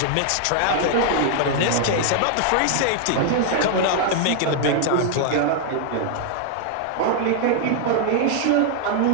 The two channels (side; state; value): both; different; correlation 0.00